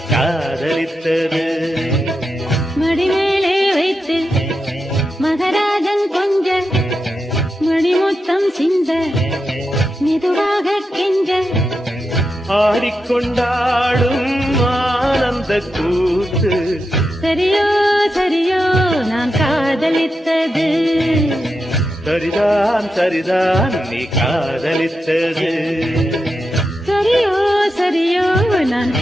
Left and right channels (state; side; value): normal; both; correlation 0.88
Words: காதலித்தது மடிமேலே வைத்து மகராஜன் கொஞ்ச மணிமுத்தம் சிந்த மெதுவாக கெஞ்ச ஆடிக்கொண்டாடும் ஆனந்த கூத்து சரியோ சரியோ நான் காதலித்தது சரிதான் சரிதான் நீ காதலித்தது சரியோ சரியோ நான்